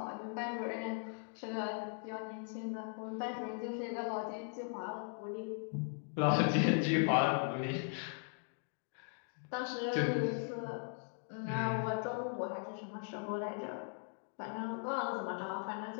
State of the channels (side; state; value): right; silent; 52 dB below the other